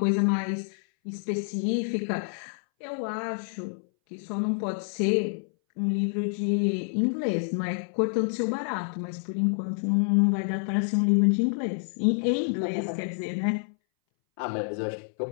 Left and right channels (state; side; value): silent; right; 60 dB below the other